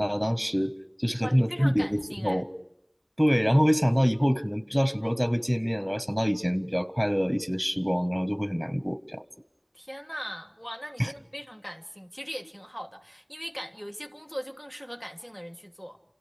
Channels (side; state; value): both; identical; correlation 1.00